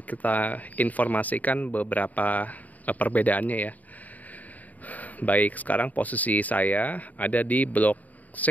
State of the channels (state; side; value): late; right; 0.076 ms